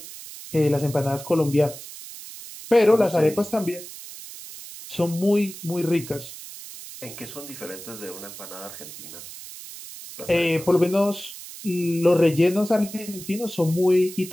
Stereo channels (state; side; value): noise; right; hiss, 14 dB below the sound